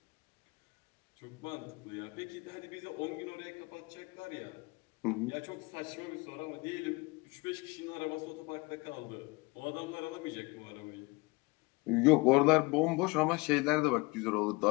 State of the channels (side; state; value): right; quieter; 25.6 dB